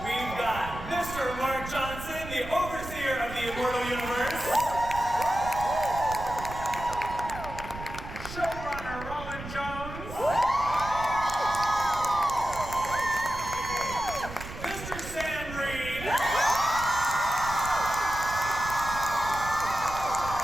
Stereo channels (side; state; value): right; noise; rumble, 11 dB below the sound